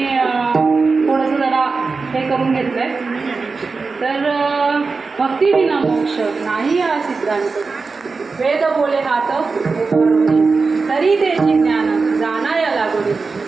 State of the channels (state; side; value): quieter; left; 4.3 dB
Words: थोडंसं जरा हे करून घेतलंय. तर भक्ती विना मोक्ष नाही हा सिद्धांत. वेद बोले हात तरी त्याची ज्ञान जाणाया लागोनी